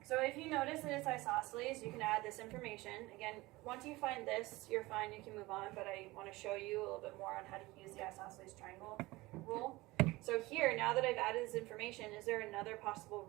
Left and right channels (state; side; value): quieter; left; 20.5 dB